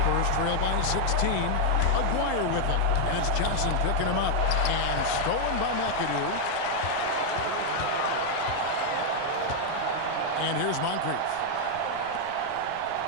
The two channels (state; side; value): different; both; correlation 0.00